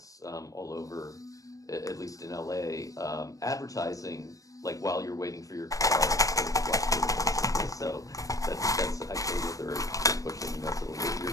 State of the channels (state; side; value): late; right; 0.16 ms